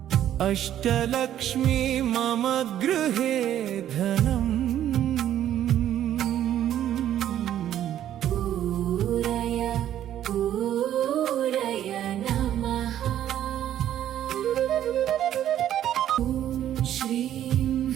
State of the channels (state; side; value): quieter; left; 11.3 dB